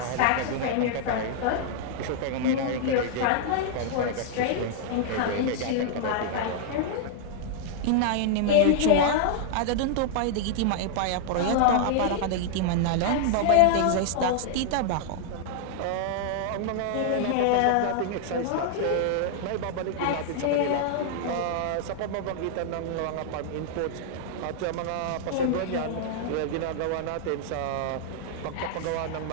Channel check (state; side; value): different; both; correlation -0.01